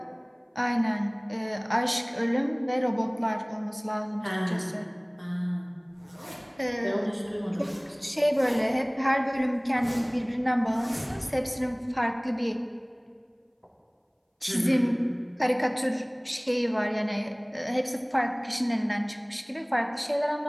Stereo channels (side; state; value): both; identical; correlation 1.00